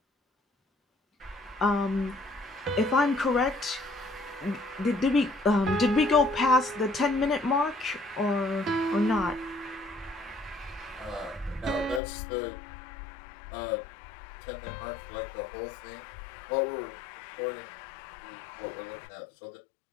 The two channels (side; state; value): right; drops out; at 12.0 s